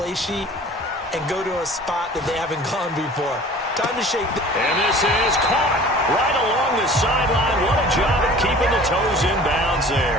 sheet and go to a spot that they haven't gone before. Time to shake. And this is caught right along the sideline. What a job of keeping the toes in bounds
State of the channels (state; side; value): normal; both; correlation 0.45